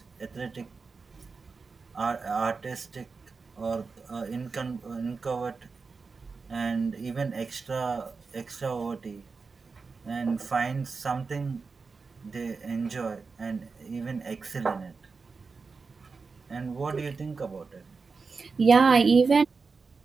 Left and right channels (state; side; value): quieter; left; 4.6 dB